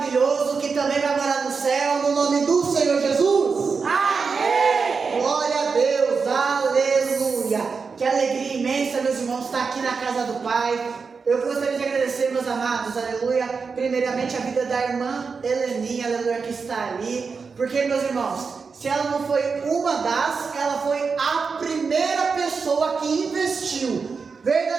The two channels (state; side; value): quieter; left; 5.1 dB